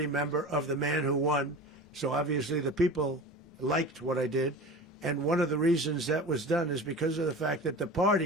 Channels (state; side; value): normal; both; correlation 0.34